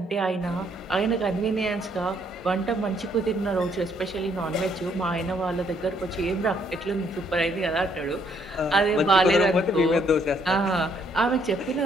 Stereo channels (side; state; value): both; normal; correlation 0.68